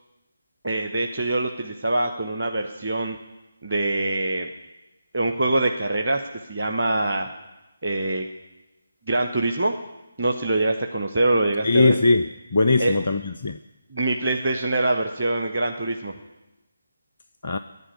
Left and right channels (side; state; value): both; inverted; correlation -0.85